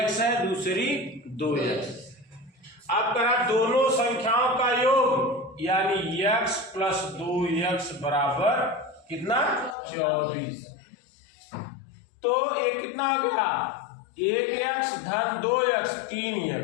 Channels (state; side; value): drops out; right; at 9.8 s